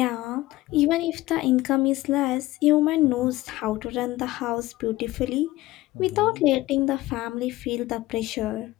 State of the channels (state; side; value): quieter; right; 17.8 dB